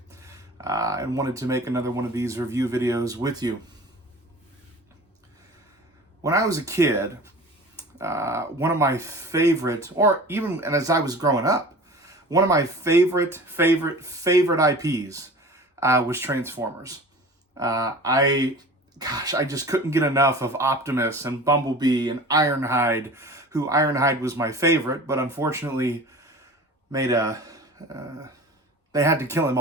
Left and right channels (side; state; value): both; normal; correlation 0.39